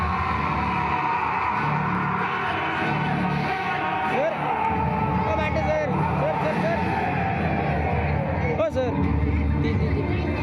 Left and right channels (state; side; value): identical; both; correlation 1.00